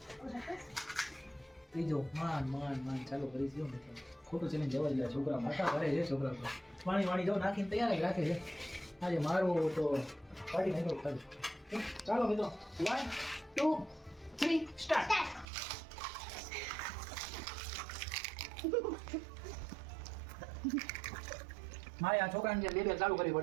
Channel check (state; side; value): drops out; left; at 15.5 s